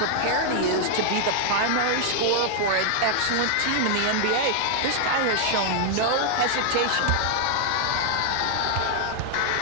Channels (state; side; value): different; both; correlation 0.00